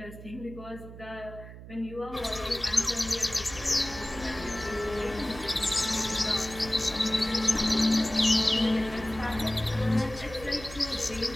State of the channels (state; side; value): noise; right; hum, 14 dB below the sound